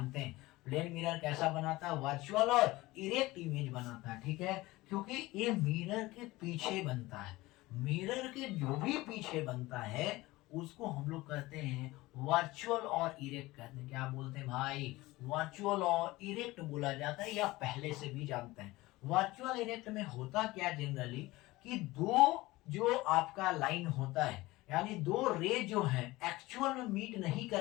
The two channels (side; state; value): right; quieter; 19.6 dB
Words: हैं। प्लेन मिरर कैसा बनाता है, वर्चुअल और इरेक्ट इमेज बनाता है, ठीक है, क्योंकि ये मिरर के पीछे बनता है। मिरर के जो भी पीछे बनता है उसको हम लोग कहते हैं वर्चुअल और इरेक्ट कहते हैं। क्या बोलते हैं भाई, वर्चुअल और इरेक्ट बोला जाता है, या पहले से भी जानते हैं। वर्चुअल इरेक्ट में होता क्या जनरली, कि दो जो आपका लाइन होता है, यानी दो रे जो है एक्चुअल में मीट नहीं